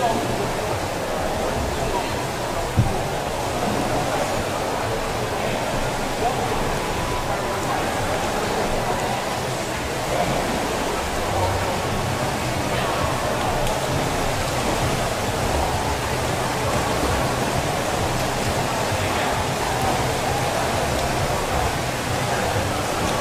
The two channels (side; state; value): both; identical; correlation 1.00